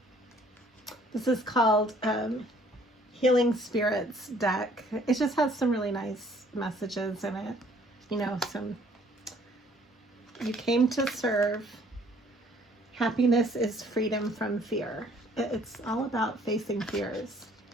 This is called Healing Spirits deck. It just has some really nice messages in it. You know, you came to serve. Happiness is freedom from fear. It's all about facing fears.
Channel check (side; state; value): both; normal; correlation 0.60